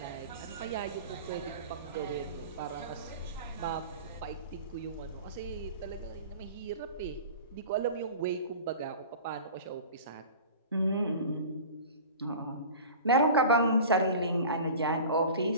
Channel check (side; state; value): both; inverted; correlation -0.38